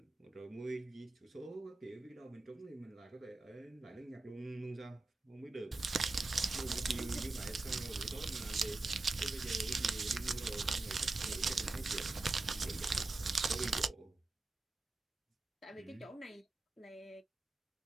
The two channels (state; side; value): quieter; left; 3.4 dB